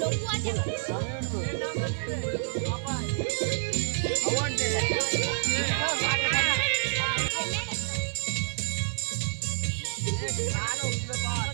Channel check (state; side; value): silent; left; digital silence